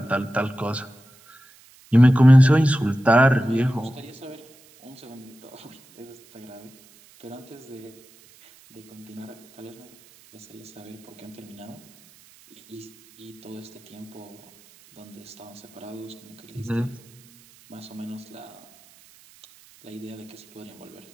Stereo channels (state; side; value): noise; right; hiss, 26 dB below the sound